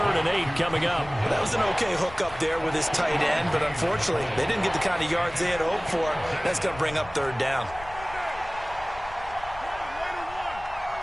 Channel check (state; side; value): noise; left; rumble, 17 dB below the sound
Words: and 8 coming up. That was an okay hook up there with his tight end, but unfortunately, they didn't get the kind of yards they had hoped for. That's going to bring up 3rd down.